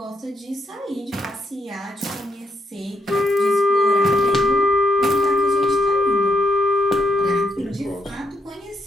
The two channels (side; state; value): both; normal; correlation 0.77